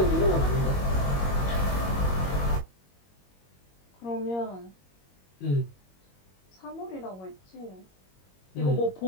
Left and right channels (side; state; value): right; late; 21 ms